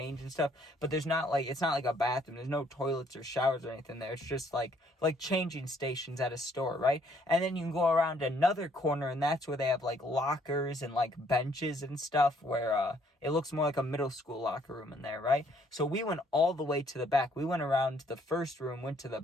and stuff, but it's not like a bathroom. There's no toilets or showers or anything there. It's just like changing stations at a store, right? And then you can go around another corner, and that's where they have like lockers and like benches and stuff, where it looks more like a middle school locker room in there, right? So we went all the way to the back. We went around the first room, went to the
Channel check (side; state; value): both; normal; correlation 0.65